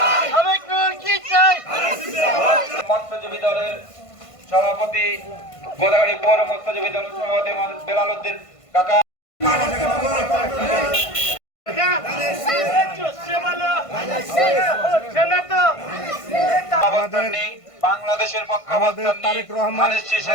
মৎস্যজীবী দলের সভাপতি, গোদাগাড়ি পৌর মৎস্যজীবী দলের সভাপতি বেলাল উদ্দিন কাকা, বাংলাদেশের আমাদের তারেক রহমান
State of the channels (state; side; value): late; right; 1.5 ms